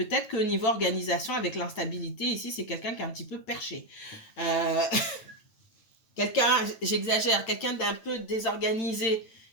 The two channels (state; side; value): late; right; 9.1 ms